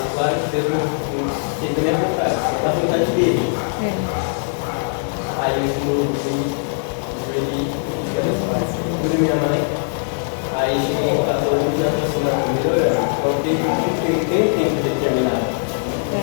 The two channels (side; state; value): right; silent; digital silence